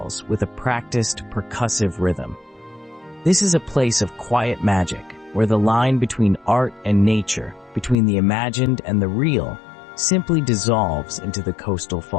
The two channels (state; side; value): drops out; right; at 8.0 s